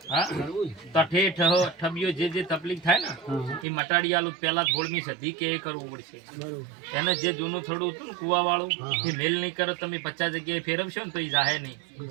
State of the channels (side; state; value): left; drops out; at 3.7 s